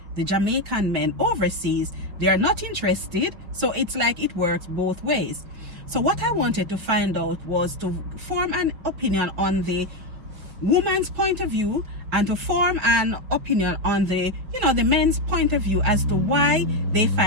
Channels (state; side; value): late; left; 5.9 ms